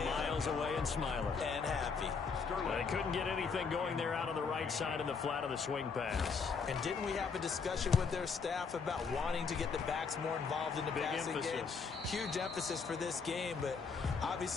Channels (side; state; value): right; quieter; 5.3 dB